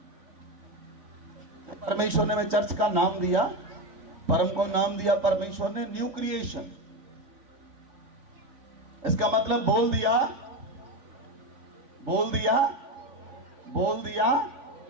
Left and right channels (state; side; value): late; left; 3.5 ms